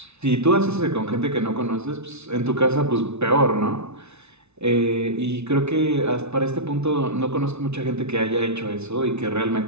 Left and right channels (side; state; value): left; late; 0.81 ms